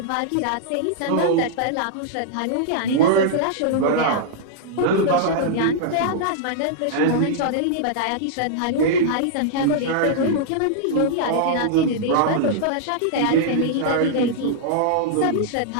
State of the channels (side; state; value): both; different; correlation -0.01